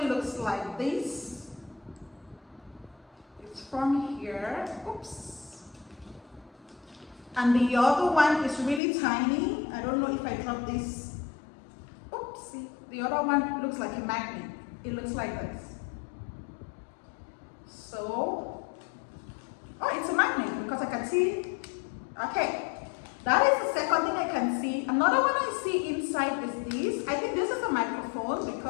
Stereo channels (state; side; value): drops out; right; at 8.8 s